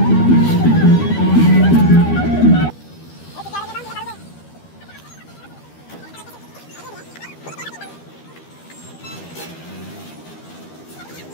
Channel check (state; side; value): late; right; 13 ms